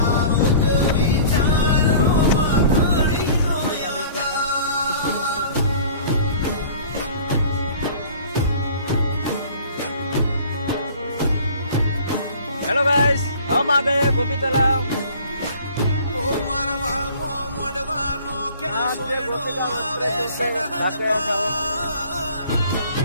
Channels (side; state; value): both; inverted; correlation -0.47